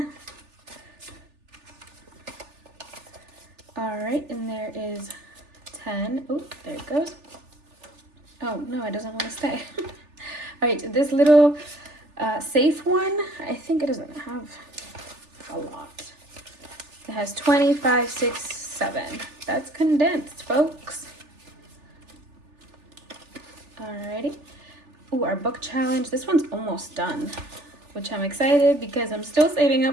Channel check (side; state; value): left; late; 3.4 ms